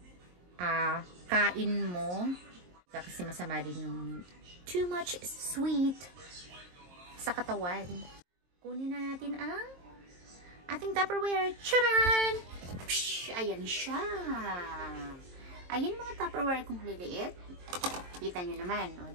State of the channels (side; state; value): left; late; 22 ms